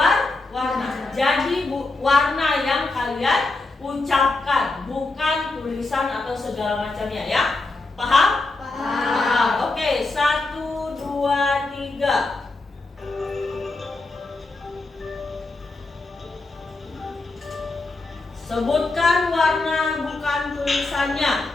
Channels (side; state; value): right; quieter; 3.3 dB